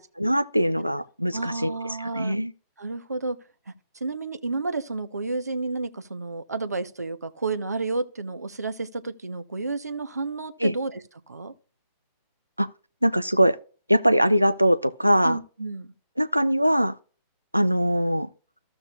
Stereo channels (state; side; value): inverted; both; correlation -0.92